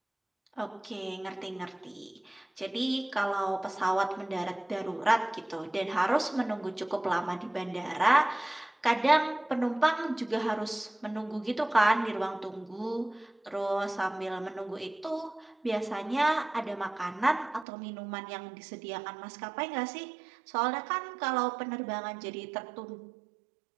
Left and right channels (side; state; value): left; drops out; at 17.7 s